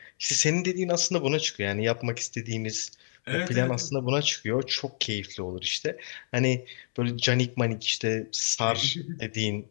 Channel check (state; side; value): silent; right; 59 dB below the other